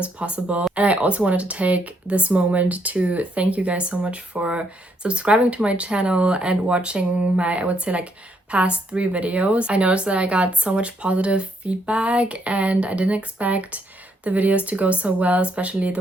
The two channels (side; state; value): both; normal; correlation 0.73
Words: possible. And I also wanted to take this moment to thank you guys so much for subscribing to my channel and watching my, I would say, like past 3 videos. I noticed that I got so much positive feedback and I didn't expect the videos to go so well, especially